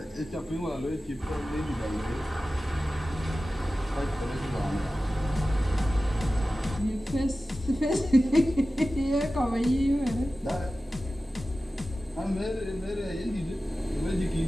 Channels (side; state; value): both; normal; correlation 0.95